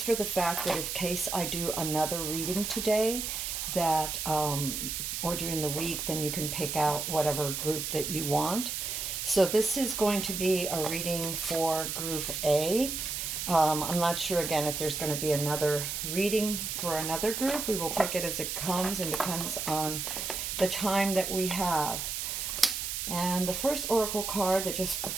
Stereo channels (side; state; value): right; noise; hiss, 3 dB below the sound